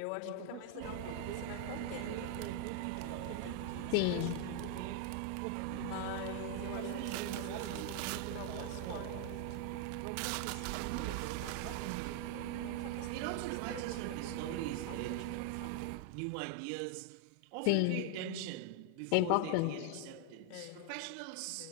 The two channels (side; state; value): both; different; correlation 0.00